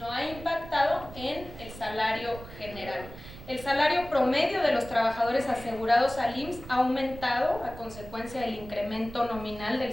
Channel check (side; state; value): right; noise; rumble, 15 dB below the sound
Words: ha impactado en el salario general. El salario promedio de los trabajadores asegurados al IMSS ha aumentado a consecuencia del incremento nominal